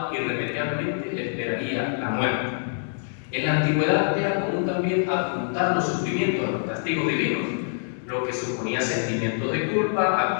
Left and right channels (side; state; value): right; silent; digital silence